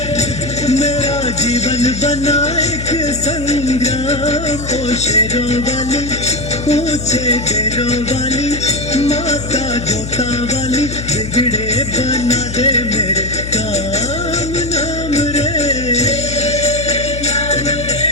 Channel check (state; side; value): noise; left; hum, 8 dB below the sound